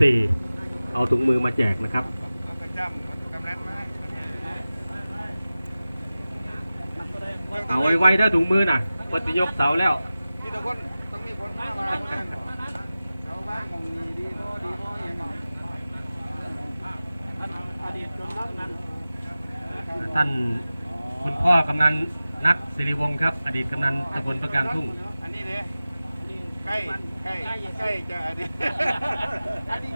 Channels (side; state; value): both; inverted; correlation -0.96